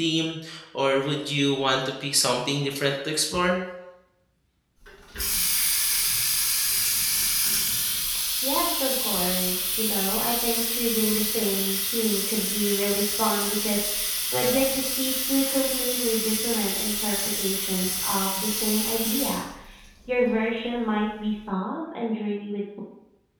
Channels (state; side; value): identical; both; correlation 1.00